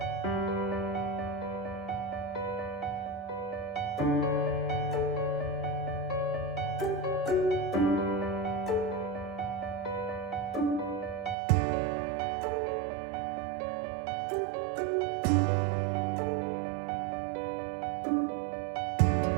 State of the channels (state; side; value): drops out; left; at 11.4 s